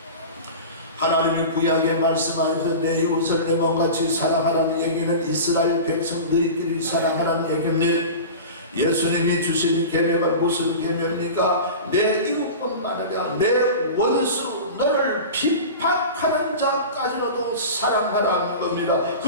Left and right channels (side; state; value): both; inverted; correlation -0.32